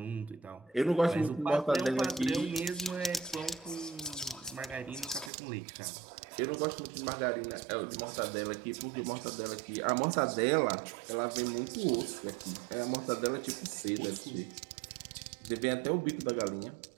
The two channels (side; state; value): left; drops out; at 5.3 s